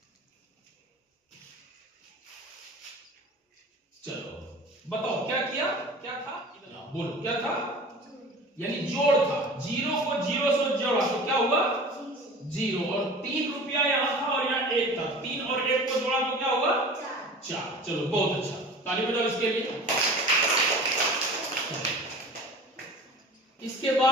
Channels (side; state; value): both; normal; correlation 0.40